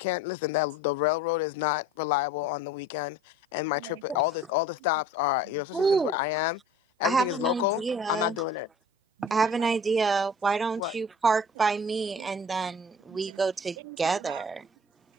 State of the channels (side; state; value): both; normal; correlation 0.45